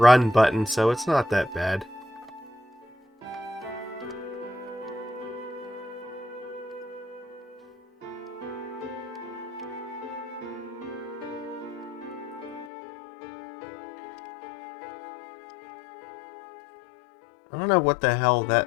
button, so it's not that bad. don't know what the hell that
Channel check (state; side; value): drops out; right; at 12.7 s